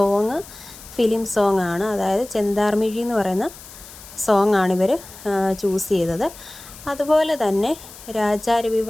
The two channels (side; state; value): left; noise; hiss, 18 dB below the sound